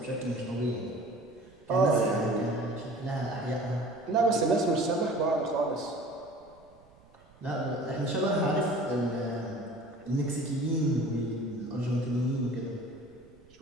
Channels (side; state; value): right; noise; rumble, 27 dB below the sound